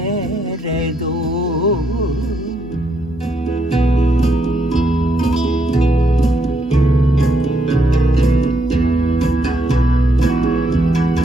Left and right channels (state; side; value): normal; both; correlation 0.75